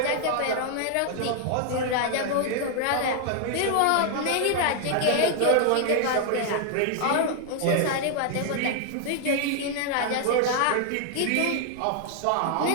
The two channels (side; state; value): both; different; correlation 0.00